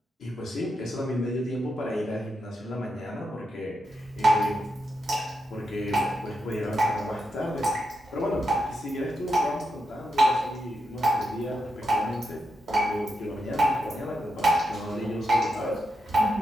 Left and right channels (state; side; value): normal; both; correlation 0.85